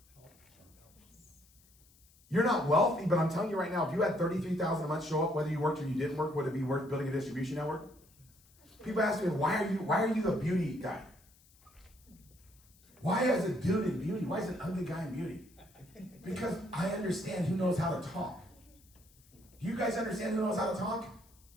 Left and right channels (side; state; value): left; noise; hiss, 29 dB below the sound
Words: You're not wealthy, but I'm telling you right now, if you had 33,000 a month show up, whether you worked or you didn't work, would it be worth building a distribution network? People ask me, why are you the beauty guy? Why is a dude in beauty? Why is an ugly guy in beauty? Because I understand who knows how to talk. Do you guys understand who knows how to talk?